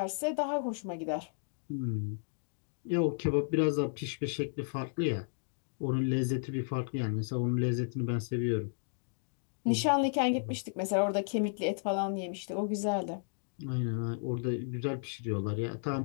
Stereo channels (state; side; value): silent; right; digital silence